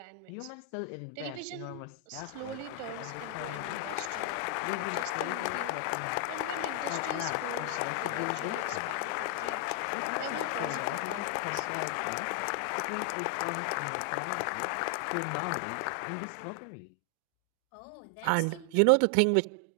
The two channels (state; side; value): different; both; correlation 0.00